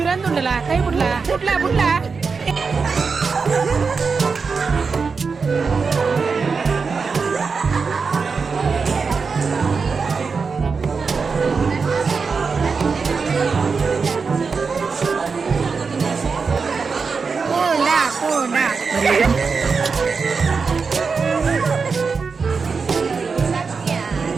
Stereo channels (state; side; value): quieter; left; 5.0 dB